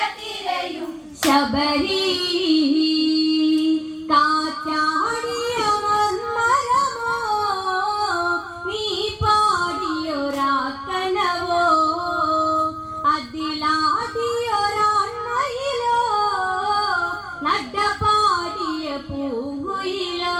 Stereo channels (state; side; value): identical; both; correlation 1.00